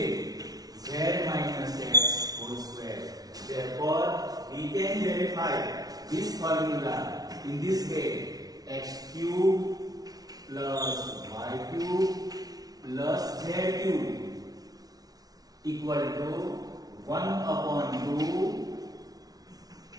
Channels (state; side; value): late; left; 0.18 ms